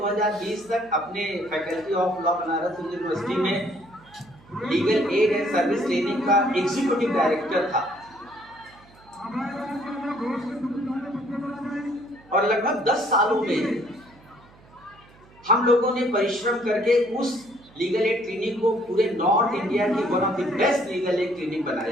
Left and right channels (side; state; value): right; noise; hum, 26 dB below the sound